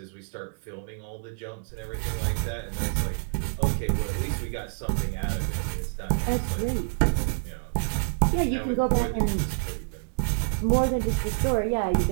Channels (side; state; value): left; silent; digital silence